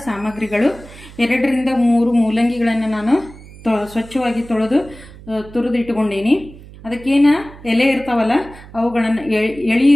ಸಾಮಗ್ರಿಗಳು 2 ರಿಂದ 3 ಮೂಲಂಗಿಗಳನ್ನು ನಾನು ಸ್ವಚ್ಛವಾಗಿ ತೊಳೆದು ತುರಿದಿಟ್ಟುಕೊಂಡೀನಿ. ಅದಕ್ಕೇನು ಎಲೆ ಇರ್ತಾವಲ್ಲ ಅವುಗಳನ್ನು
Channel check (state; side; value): noise; right; hum, 19 dB below the sound